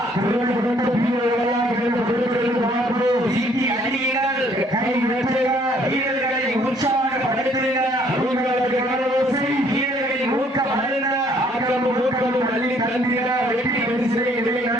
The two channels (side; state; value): both; normal; correlation 0.63